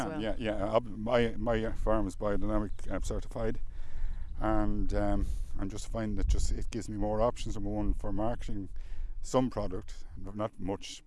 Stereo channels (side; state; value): both; identical; correlation 1.00